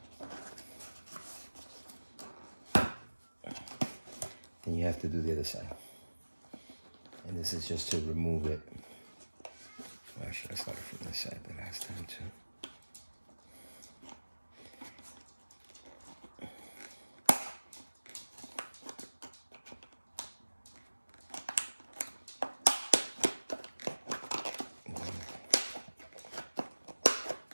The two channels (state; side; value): inverted; both; correlation -1.00